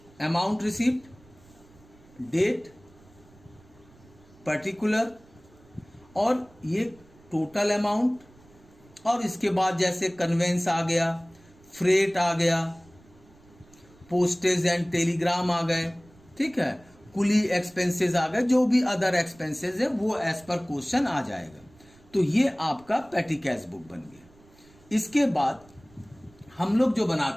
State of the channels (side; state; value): right; noise; rumble, 27 dB below the sound